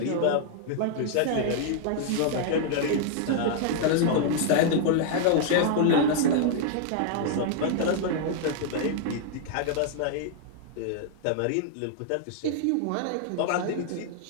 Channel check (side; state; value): both; different; correlation 0.00